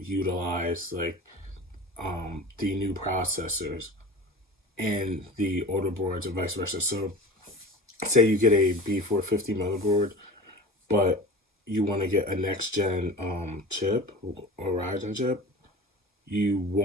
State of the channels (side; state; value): both; normal; correlation 0.37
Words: utilize like the new processors and the older boards and vice versa. So say you get a B450 motherboard, but you want to get a next gen chip or Ryzen chip, you